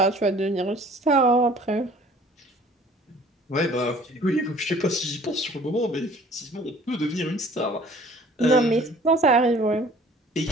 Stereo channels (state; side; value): normal; both; correlation 0.52